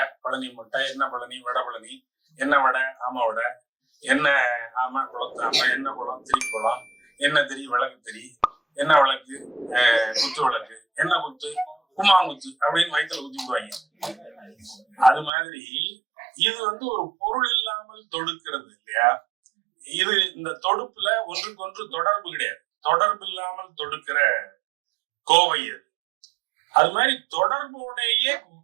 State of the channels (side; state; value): left; drops out; at 15.3 s